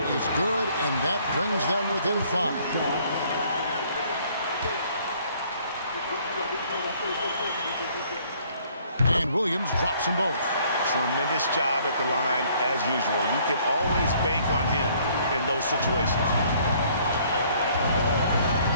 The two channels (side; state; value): both; inverted; correlation -0.61